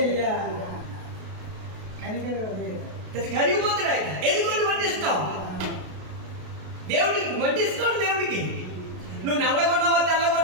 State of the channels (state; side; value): late; left; 32 ms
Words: కరిగిపోతాడు ఆయన. ఎదుగుని వడ్డిస్తాం దేవుడికి, వడ్డిస్తాడు దేవుడికి. నువ్వు నల్లగొన్నావా,